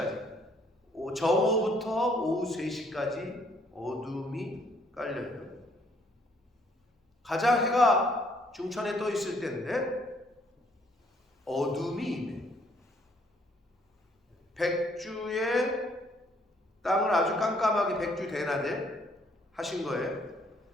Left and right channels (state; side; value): normal; both; correlation 0.65